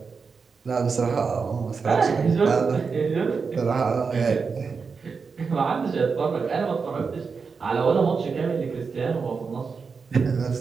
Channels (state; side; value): quieter; left; 5.2 dB